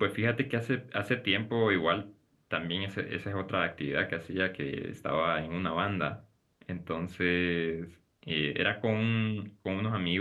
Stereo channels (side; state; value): both; identical; correlation 1.00